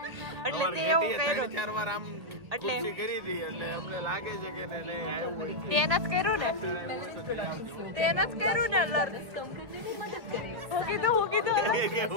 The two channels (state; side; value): late; left; 1.9 ms